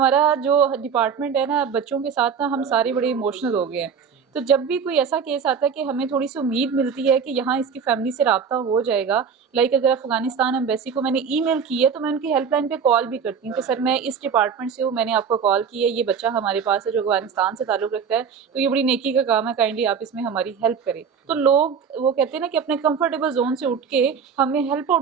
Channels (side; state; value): left; quieter; 6.7 dB